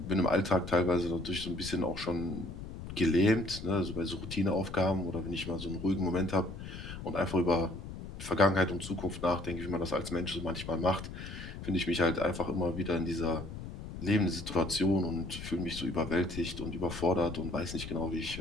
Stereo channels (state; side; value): noise; left; rumble, 10 dB below the sound